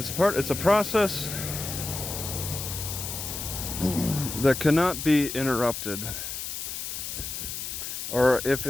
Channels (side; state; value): left; noise; hiss, 6 dB below the sound